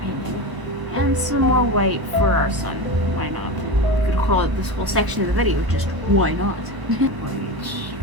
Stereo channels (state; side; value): late; left; 1.0 ms